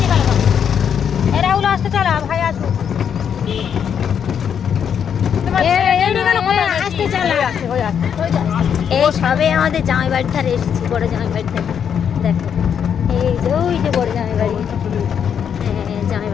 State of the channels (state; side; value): quieter; right; 8.0 dB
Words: এই সবে আমাদের জামাই বাড়ি ধারে এসেছি, বড় জামাই বাড়ি থেকে। দেখো এই যে ওই যে বড় জামাই বাড়ি, হ্যাঁ জামাই